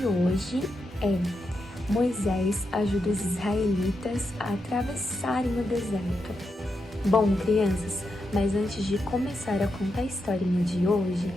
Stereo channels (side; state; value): both; normal; correlation 0.85